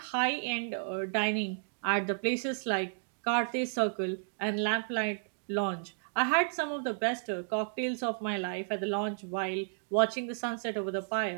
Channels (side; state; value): left; silent; digital silence